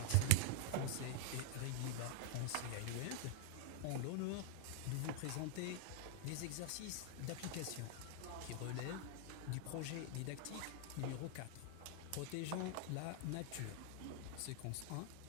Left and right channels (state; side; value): different; both; correlation 0.00